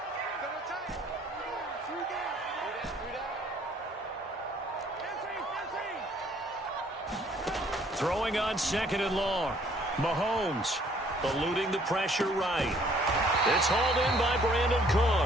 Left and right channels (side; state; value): both; normal; correlation 0.61